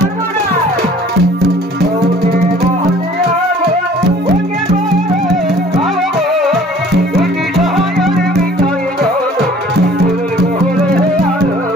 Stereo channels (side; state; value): both; normal; correlation 0.52